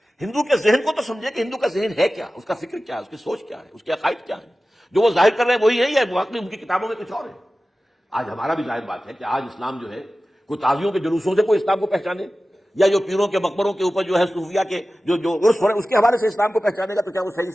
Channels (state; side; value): normal; both; correlation 0.95